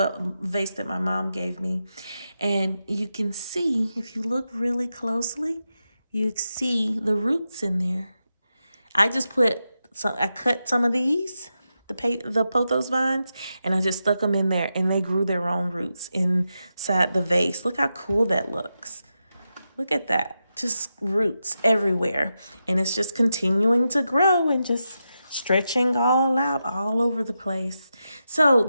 vase that my mom gave me. And you can see, if you look really closely, you see the roots in there. I cut some of these, the Pothos vines, and I just stuck them in there, and they grew their own roots inside the vase. Look how cool that looks. Look at that. Just roots everywhere. And it's just continuing to grow and just stretching all out all over the place. So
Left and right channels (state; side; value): inverted; both; correlation -0.88